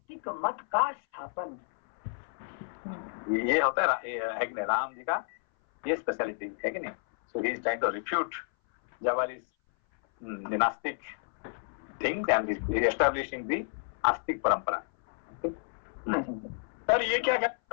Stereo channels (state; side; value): silent; right; 57 dB below the other